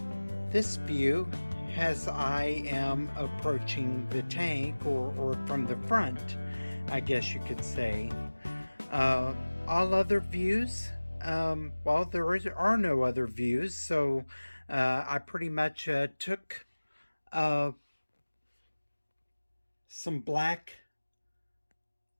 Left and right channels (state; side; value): inverted; both; correlation -1.00